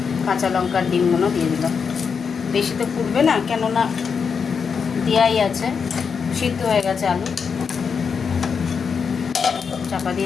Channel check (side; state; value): right; quieter; 6.1 dB